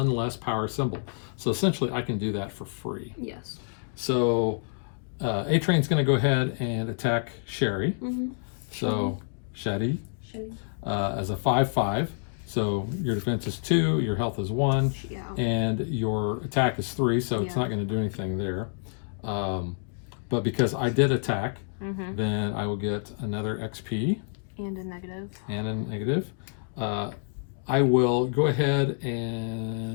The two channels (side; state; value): right; silent; digital silence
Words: less power symbol. So essentially, I can do that for free. Yes. So A-Train's going to go ahead and attack Sherry. So Shetty as a 5/5. So your defense is 2, your health is 1, and your attack is 3, so it's not going to do anything there. But because I did attack, then I will get another XP. And a negative. And a negative. I will go ahead